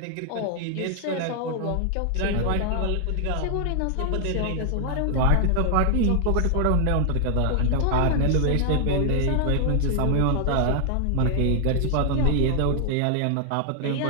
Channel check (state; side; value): different; both; correlation 0.00